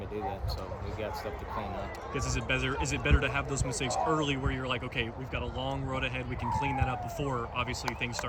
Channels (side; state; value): both; identical; correlation 1.00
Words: do that. So we've got stuff to clean up. Because is it better to have those mistakes early, where you're like, okay, we've got a long road ahead, we can clean that up before obviously things